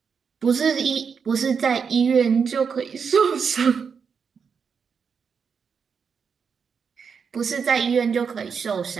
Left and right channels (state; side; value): quieter; left; 6.2 dB